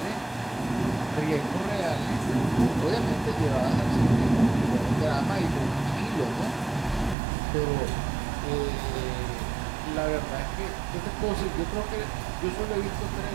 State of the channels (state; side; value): drops out; left; at 7.2 s